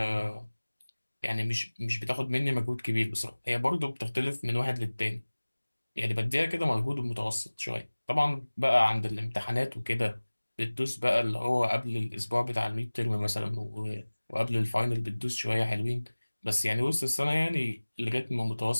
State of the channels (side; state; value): both; inverted; correlation -1.00